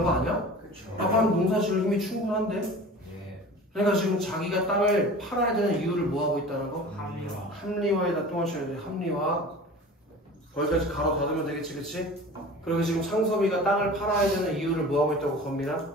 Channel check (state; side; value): normal; both; correlation 0.39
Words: 거 아니야? 그쵸. 아빠는 농사 지을 힘이 충분한데. 예. 그러니까 지금 자기가 땅을 팔아야 되는 이유를 뭐하고 있다는 거? 합리화. 합리화에다 또 하셔야 돼. 합리화. 거기까지 가로 닫으면 되겠지, 그치? 그리고 지금 창섭이가 땅을 팔아야 되는 이유를 뭐하고 있다고 겁니다? 자,